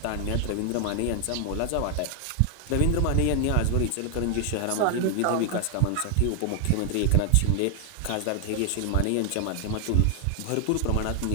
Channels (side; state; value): both; different; correlation 0.00